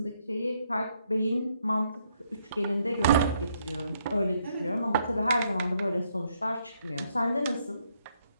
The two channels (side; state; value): both; inverted; correlation -0.73